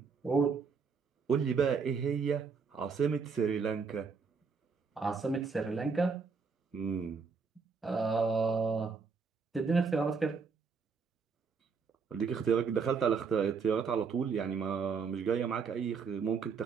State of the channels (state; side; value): quieter; left; 5.4 dB